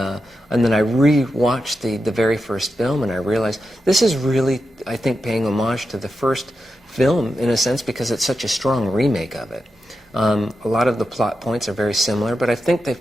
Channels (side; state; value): both; normal; correlation 0.88